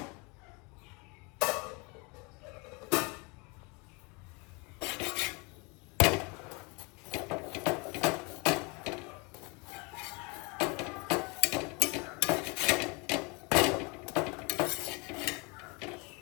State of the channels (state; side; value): quieter; right; 29.6 dB